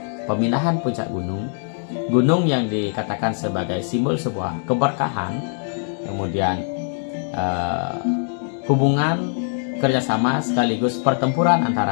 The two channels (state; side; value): silent; right; 60 dB below the other